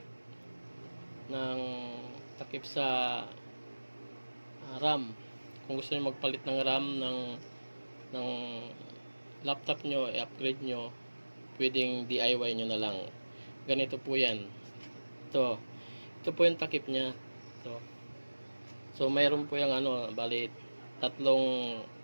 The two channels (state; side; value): inverted; both; correlation -1.00